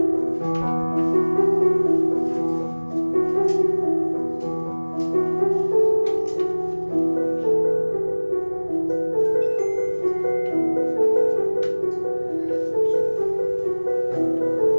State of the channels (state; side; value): inverted; both; correlation -1.00